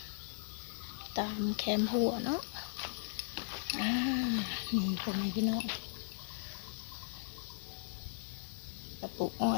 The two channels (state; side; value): silent; right; digital silence